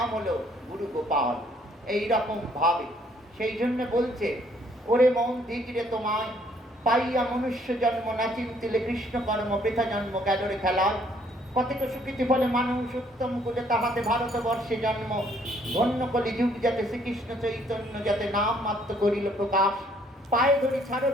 হলো গুরু গোপাল। এই রকম ভাবে সেই জন্য বলছে, ওরে মন দিগিরে তোমায় পাইয়া মনুষ্য জন্ম না চিন্তিলে কৃষ্ণ কর্ম বৃথা জন্ম গেলরে খেলায়। কতক সুকৃতি ফলে মানুষ উত্তম কুলে তাহাতে ভারতবর্ষে জন্ম, ধন্য কলি যুগ যাতে শ্রীকৃষ্ণ চৈতন্য যাতে নাম মাত্র করিল প্রকাশ। পায়ে ধরি ছাড়ো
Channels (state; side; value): normal; both; correlation 0.64